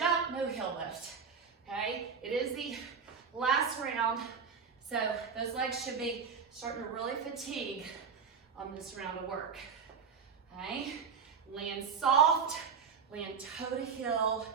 no heel lift, okay? It is the last round, so those legs should be starting to really fatigue on this round of work, okay? Land soft, land toe to heel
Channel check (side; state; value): left; quieter; 6.2 dB